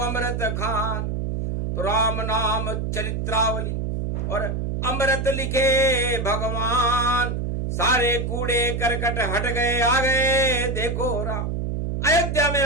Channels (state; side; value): noise; right; hum, 2 dB below the sound